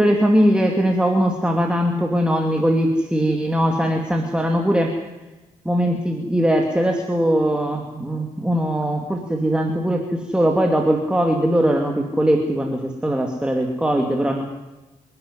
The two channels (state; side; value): normal; both; correlation 0.89